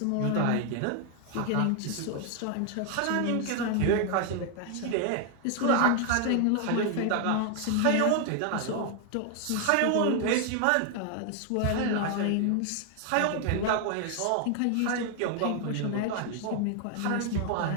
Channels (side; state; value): both; different; correlation 0.00